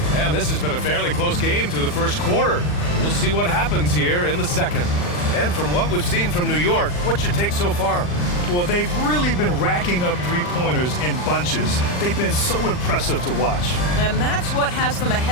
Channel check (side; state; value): right; late; 40 ms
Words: And this has been a fairly close game through the first quarter. We'll see what happens here in the second. And from what we've seen from New York, what's your take so far? Well, they've really been racking up three-pointers in bunches. They've been so impressive to watch. And that's what has them